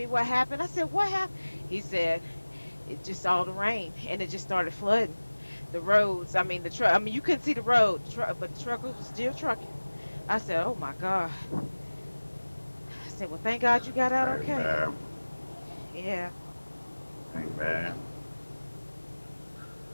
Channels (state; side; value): inverted; both; correlation -1.00